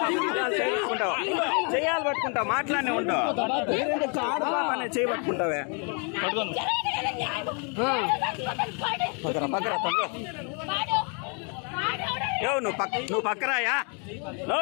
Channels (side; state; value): right; quieter; 37.2 dB